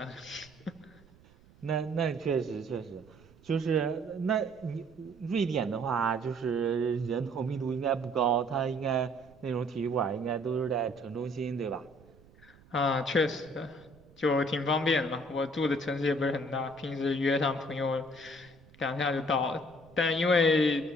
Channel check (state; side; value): noise; right; rumble, 26 dB below the sound